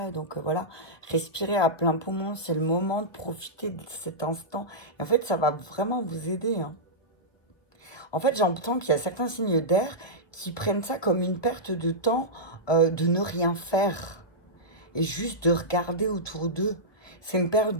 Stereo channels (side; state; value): right; late; 1.3 ms